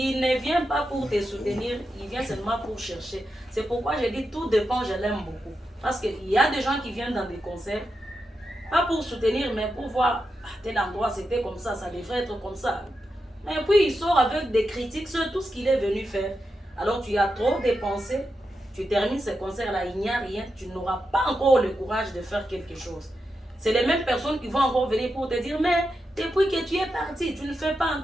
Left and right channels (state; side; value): normal; both; correlation 0.88